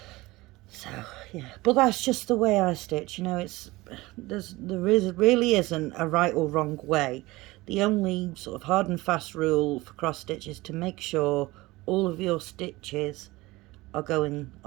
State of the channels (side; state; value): left; quieter; 20.4 dB